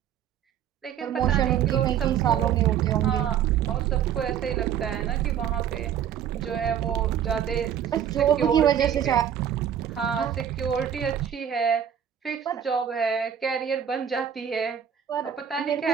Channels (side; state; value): left; quieter; 9.1 dB